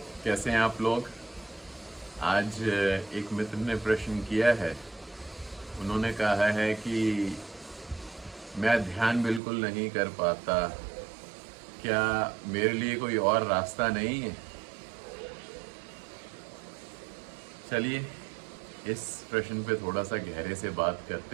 कैसे हैं आप लोग। आज एक मित्र ने प्रश्न किया है। उन्होंने कहा है कि मैं ध्यान बिल्कुल नहीं कर पाता, क्या मेरे लिए कोई और रास्ता नहीं है। चलिए इस प्रश्न पे थोड़ा सा गहरे से बात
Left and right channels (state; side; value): drops out; left; at 9.4 s